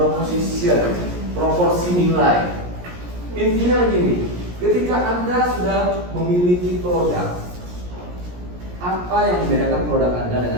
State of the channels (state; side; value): late; left; 17 ms